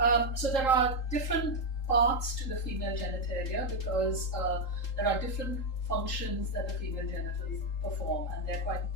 so there are different parts to the female genitalia because there are different functions that the female genitals perform, and they're quite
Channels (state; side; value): late; right; 3.8 ms